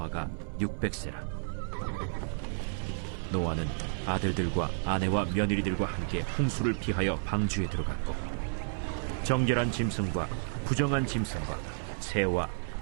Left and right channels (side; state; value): left; silent; 55 dB below the other